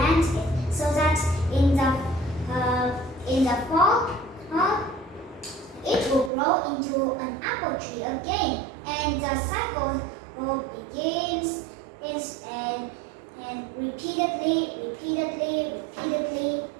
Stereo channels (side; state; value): left; drops out; at 6.3 s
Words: it so that in the fall, it will grow into an apple. apple tree again, and the cycle begins and repeatedly,